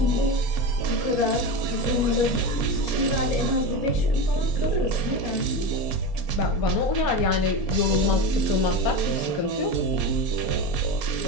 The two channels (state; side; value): late; right; 4.3 ms